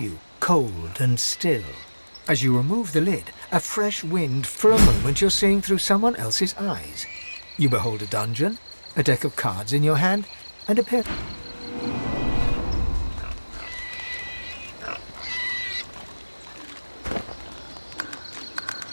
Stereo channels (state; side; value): inverted; both; correlation -1.00